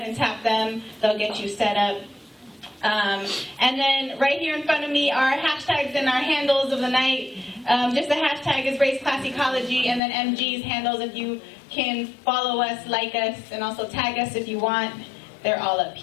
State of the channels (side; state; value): right; drops out; at 10.0 s